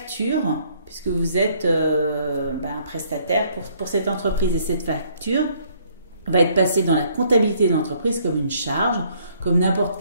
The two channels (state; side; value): inverted; both; correlation -0.64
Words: puisque vous êtes un prestataire pour cette entreprise. Et cette facture va être passée dans la comptabilité de l'entreprise comme une charge, comme n'importe